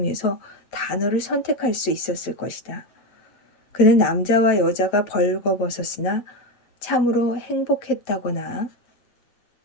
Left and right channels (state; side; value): late; right; 8.3 ms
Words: 단어를 선택할 수 있었을 것이다. 그는 남자와 여자가 벌거벗었으나 참으로 행복했다거나,